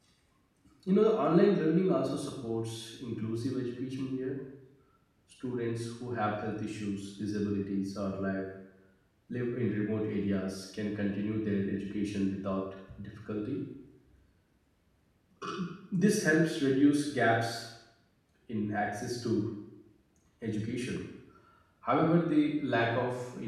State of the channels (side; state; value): both; identical; correlation 1.00